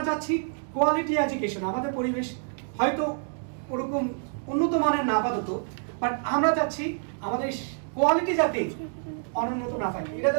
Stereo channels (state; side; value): silent; left; 60 dB below the other